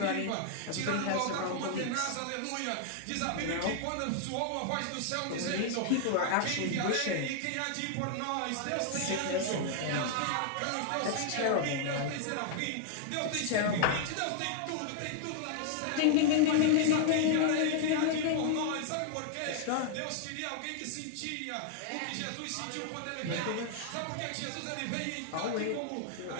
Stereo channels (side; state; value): both; different; correlation -0.01